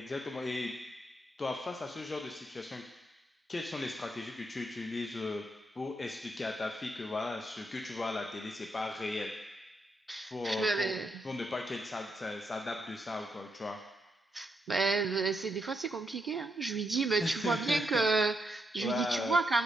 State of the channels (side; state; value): both; normal; correlation 0.80